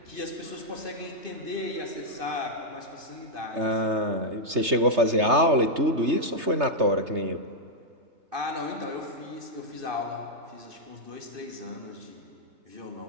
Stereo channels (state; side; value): late; left; 3.3 ms